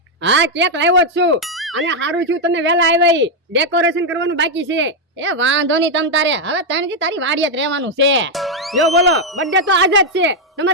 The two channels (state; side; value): normal; both; correlation 0.01